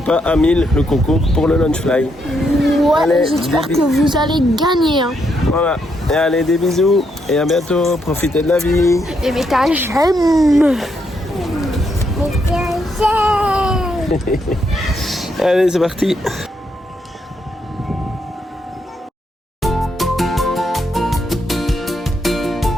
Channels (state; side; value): normal; both; correlation 0.77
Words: à 1000 le concours pour le Lunchfly. Ouais, j'espère que vous allez gagner. Hein. Voilà, et allez des bisous et à bientôt, profitez de la vie. Et mettez un j'aime. Allez c'est parti.